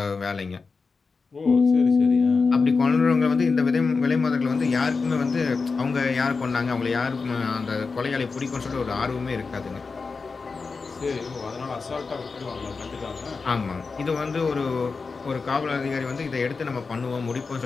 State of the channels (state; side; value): quieter; right; 4.5 dB